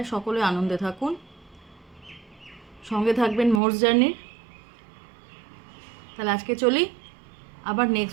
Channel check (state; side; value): drops out; left; at 3.6 s